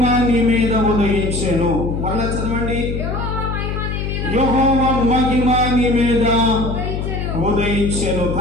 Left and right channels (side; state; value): left; noise; hum, 3 dB below the sound